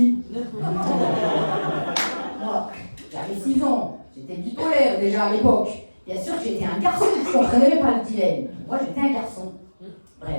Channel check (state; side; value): inverted; both; correlation -1.00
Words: Moi, j'avais 6 ans, j'étais bipolaire déjà à l'époque. Bien sûr que j'étais un garçon, je ne comprenais pas le dilemme. Moi, j'étais un garçon.